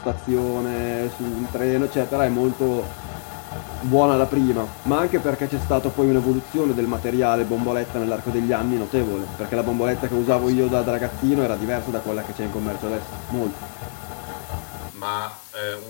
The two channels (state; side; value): silent; right; 63 dB below the other